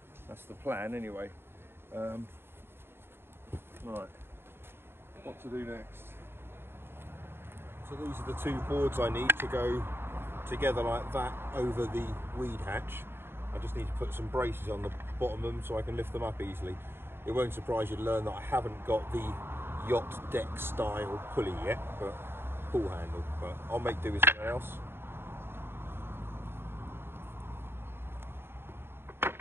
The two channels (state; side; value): late; left; 0.11 ms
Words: That's the plan anyway. Right, what to do next? So these are the two boards I need to go together like that over the weed hatch. I just need to put some braces on the bottom of them so I can lift them up easily. It won't surprise you to learn that I haven't got the yacht deck style pulley yet, but pull handle, but I'll make do with something else.